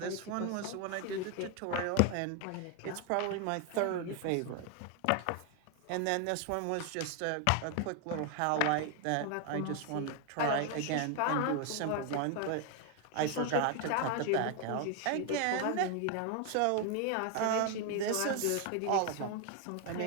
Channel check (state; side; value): different; both; correlation 0.01